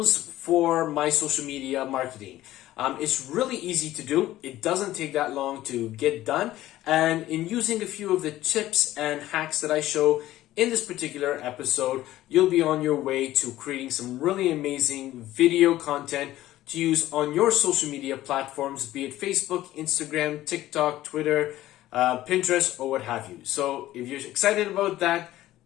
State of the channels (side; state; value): right; quieter; 14.9 dB